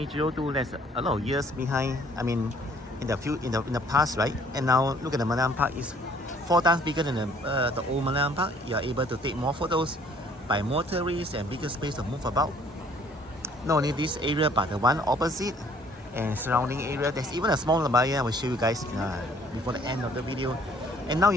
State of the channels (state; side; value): normal; both; correlation 0.59